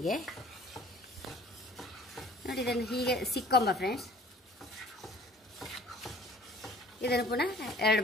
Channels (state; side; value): normal; both; correlation 0.51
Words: ನೋಡಿ ಇದನ್ನು ಹೀಗೆ ಸಿಕ್ಕೊಂಬ ಫ್ರೆಂಡ್ಸ್. ಇದನ್ನು ಪುನಃ